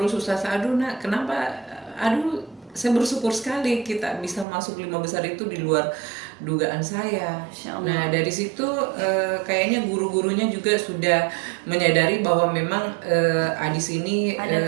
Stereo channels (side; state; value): left; drops out; at 4.5 s